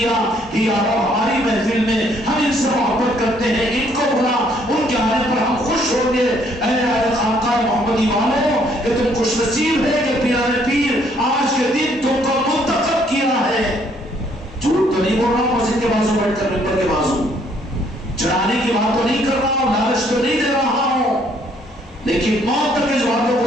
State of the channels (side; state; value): both; normal; correlation 0.66